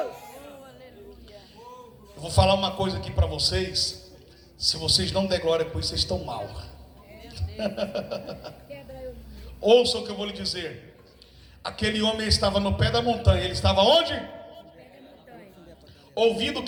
Eu vou falar uma coisa aqui para vocês. Se vocês não der glória por isso, vocês estão mal. Ouça o que eu vou lhe dizer. Aquele homem estava no pé da montanha. Ele estava onde? Ouvindo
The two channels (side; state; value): both; identical; correlation 1.00